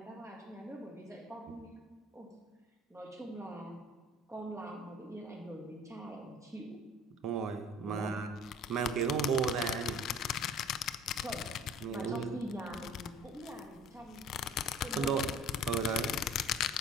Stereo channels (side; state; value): both; normal; correlation 0.47